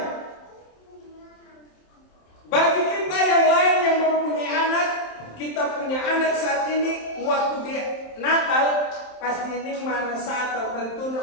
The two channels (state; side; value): late; right; 27 ms